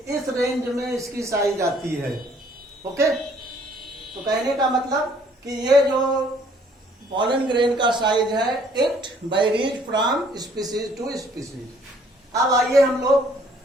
इस रेंज में इसकी साइज आती है. ओके. तो कहने का मतलब कि ये जो pollen grain का साइज है it varies from species to species. अब आइए हम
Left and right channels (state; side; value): normal; both; correlation 0.61